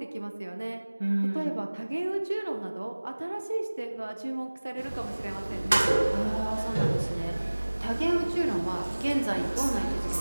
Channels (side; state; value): both; inverted; correlation -1.00